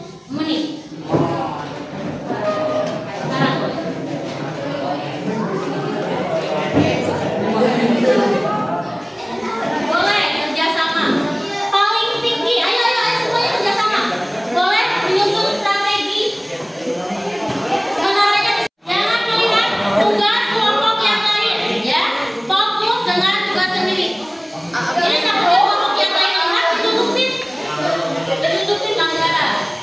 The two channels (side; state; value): both; identical; correlation 1.00